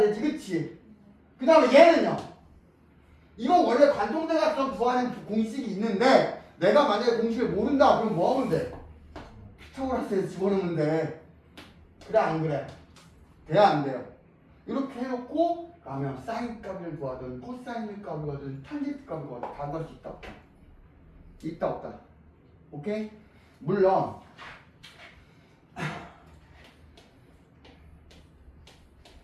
그치? 그 다음에 얘는요? 이건 원래 관통대각선 구하는 공식이 있는데 내가 만약에 공식을 모른다 그럼 뭐 하면 돼? 피타고라스에서 집어넣으면 돼. 그래 안 그래? 돼야 안 돼요? 이렇게 해놓고 그러면 사인 값을 구하든 코사인 값을 구하든 탄젠트 값을 구하든 다 구할 수 있다 없다? 있다 없다? 오케이? 물론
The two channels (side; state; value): both; identical; correlation 1.00